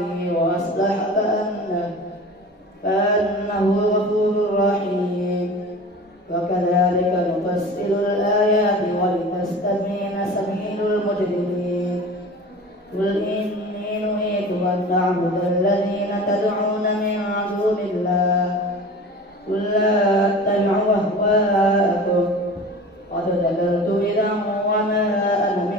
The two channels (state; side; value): normal; both; correlation 0.37